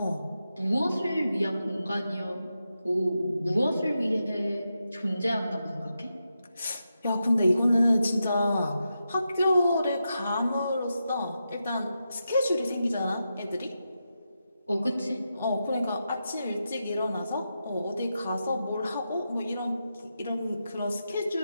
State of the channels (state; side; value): inverted; both; correlation -0.88